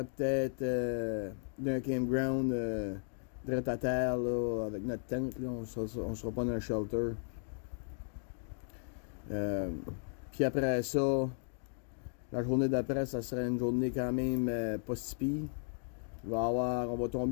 peut-être d'un campground direct à terre là, avec notre tente. Là. On sera pas dans un shelter. Puis après ça, la journée d'après, ça serait une journée quand même pas si pire. On va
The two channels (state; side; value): silent; right; digital silence